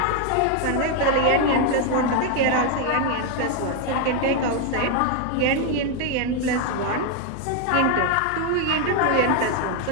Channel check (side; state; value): both; different; correlation 0.01